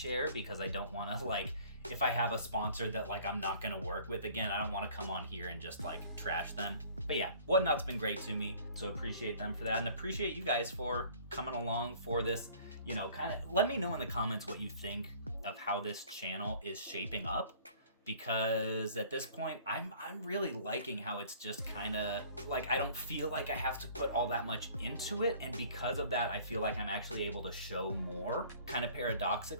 because I don't want to, like, if I have a sponsor that like I'm not gonna work with again, I don't want to come on here and just like trash them. But yeah, Whatnot's been great to me, so appreciate them for that, and appreciate you guys for coming along for this. You know, kind of let me know in the comments what you think of how this channel is shaping up, because at this point I'm really liking how it's just kind of like, I don't feel like I have to put all that much into it, and because of that I feel like I'm actually able to show more, kind of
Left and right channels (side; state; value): both; inverted; correlation -0.52